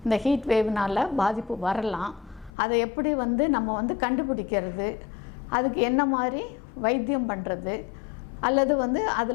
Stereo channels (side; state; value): right; drops out; at 2.5 s